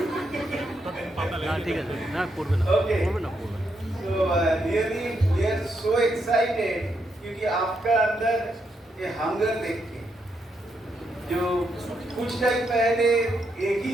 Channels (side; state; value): both; normal; correlation 0.80